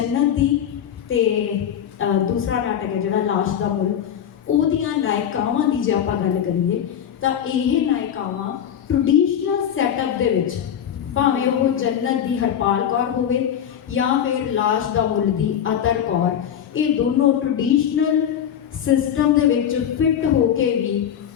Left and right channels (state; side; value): quieter; right; 9.2 dB